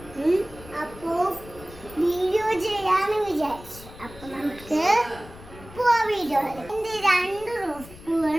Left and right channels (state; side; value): noise; left; rumble, 18 dB below the sound